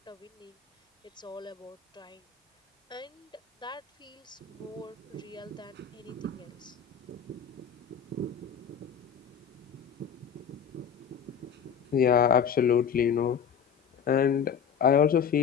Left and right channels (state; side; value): quieter; right; 7.4 dB